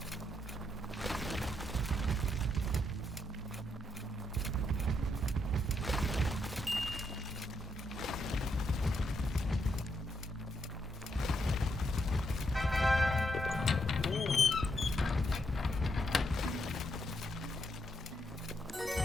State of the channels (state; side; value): normal; both; correlation 0.78